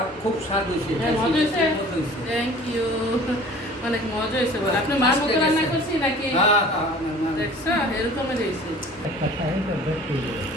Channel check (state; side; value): normal; both; correlation 0.46